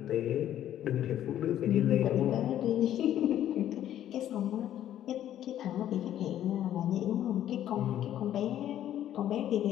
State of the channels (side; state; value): right; quieter; 11.5 dB